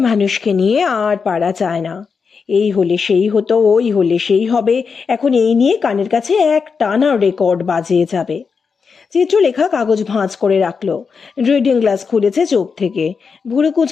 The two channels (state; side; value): quieter; right; 5.5 dB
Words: মানুষকে নিয়ে আর পারা যায় না। এই হলে সেই হতো, ওই হলে সেই হবে, এখন এই নিয়ে কানের কাছে এক টানা রেকর্ড বাজিয়ে যাবে। চিত্রলেখা কাগজ ভাঁজ করে রাখলো, রিডিং গ্লাস খুলেছে চোখ থেকে, ভুরু